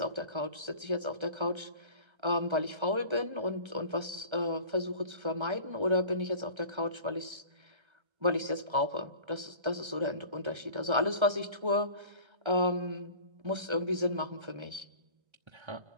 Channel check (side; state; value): left; late; 1.3 ms